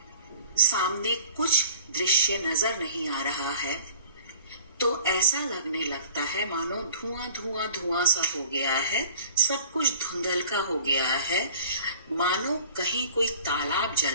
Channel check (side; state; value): both; inverted; correlation -0.46